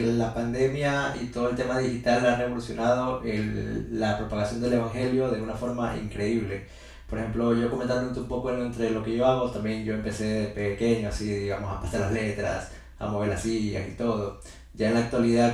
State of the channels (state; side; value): identical; both; correlation 1.00